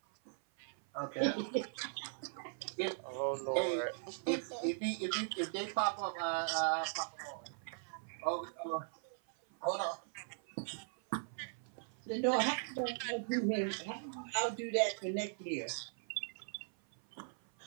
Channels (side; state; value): left; silent; 52 dB below the other